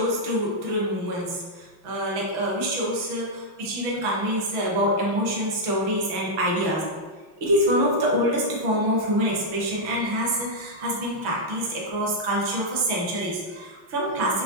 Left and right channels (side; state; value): left; late; 6.0 ms